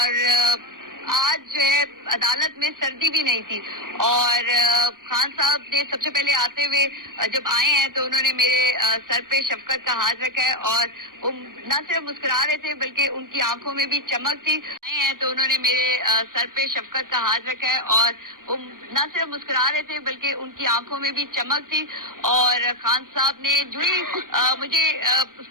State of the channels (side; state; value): left; late; 0.90 ms